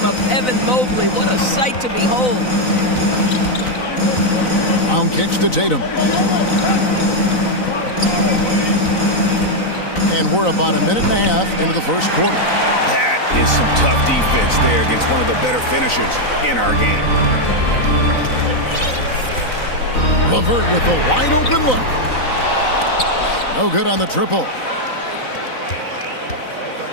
Evan Mobley. What a sight to behold. Brown kicks to Tatum. And we're about a minute and a half into the first quarter. That is some tough defense there against one of the better finishers in our game. LeVert with the wide open look. No good on the triple.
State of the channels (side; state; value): right; late; 3.9 ms